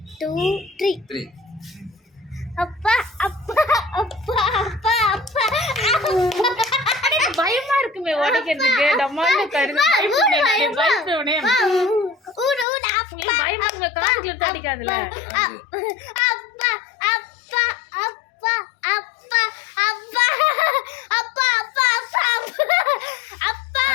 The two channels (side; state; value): right; drops out; at 12.7 s